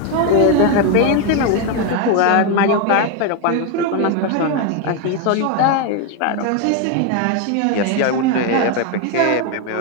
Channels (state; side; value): different; both; correlation 0.01